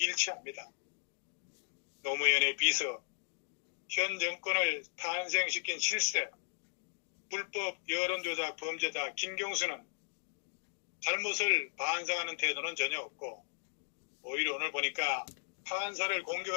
노무현의 비서, 현 정권을 탄생시킨 실세, 불법 여론조작 범죄자 김경수는 잘못을 반성하는 태도는 전혀 없고, 오히려 오늘 보니까 판사를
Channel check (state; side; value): silent; right; digital silence